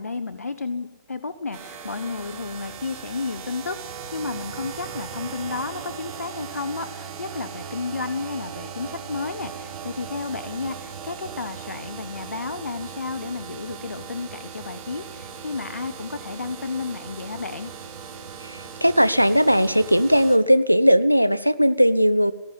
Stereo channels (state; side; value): inverted; both; correlation -0.90